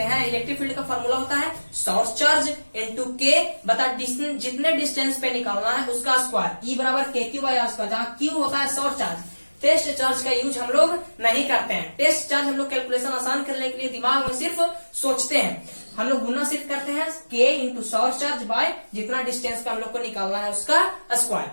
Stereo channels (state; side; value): inverted; both; correlation -1.00